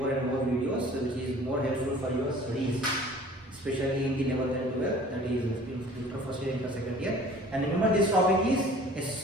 and more videos which is more helpful for your studies, especially in the level 10 12, that is inter first year, inter second year. And remember, this topic is a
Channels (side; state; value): both; normal; correlation 0.48